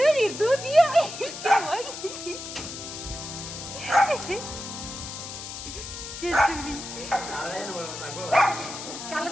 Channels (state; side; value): noise; left; hiss, 9 dB below the sound